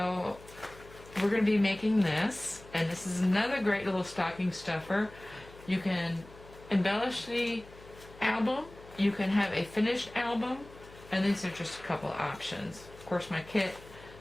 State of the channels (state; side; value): noise; left; hum, 20 dB below the sound